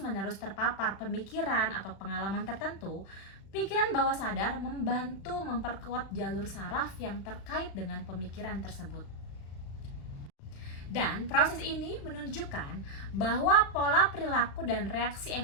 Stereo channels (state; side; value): late; right; 36 ms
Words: terpapar pemikiran atau pengalaman tertentu, pikiran bawah sadar membantu memperkuat jalur saraf yang terkait dengan pemikiran tersebut. Dan proses ini menunjukkan bahwa pola perilaku dan reaksi